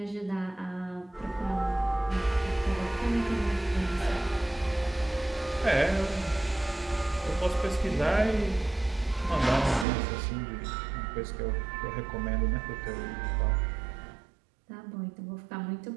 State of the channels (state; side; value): drops out; left; at 9.9 s